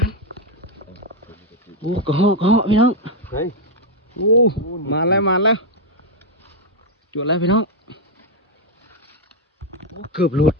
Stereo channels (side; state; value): both; normal; correlation 0.01